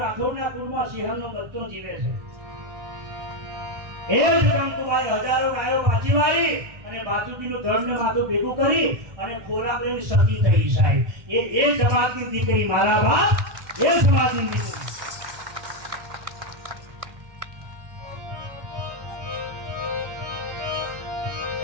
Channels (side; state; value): left; late; 1.1 ms